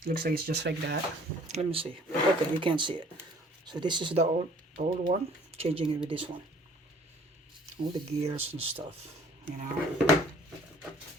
Looks like it's just like that. Let me see. Okay, you can't see it. So this is the old one. Changing it with this one. All the gears and stuff, you know.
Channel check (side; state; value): both; normal; correlation 0.55